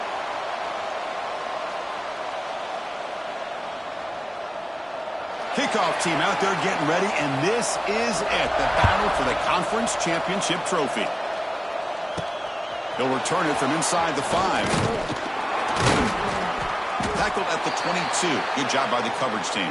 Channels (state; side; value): identical; both; correlation 1.00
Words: Kickoff team out there getting ready, and this is it, the battle for the Conference Championship Trophy. He'll return it from inside the 5. Tackled at the 22. Good job by the coverage team.